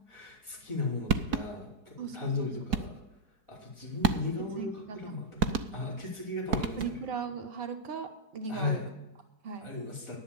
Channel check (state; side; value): late; left; 4.7 ms